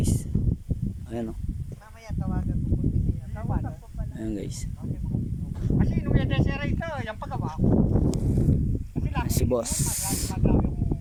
Ayan, oh. Ayan guys, si boss.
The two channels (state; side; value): identical; both; correlation 1.00